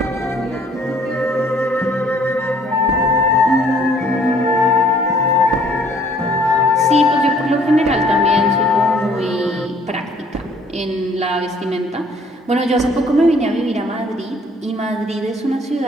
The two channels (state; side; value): normal; both; correlation 0.59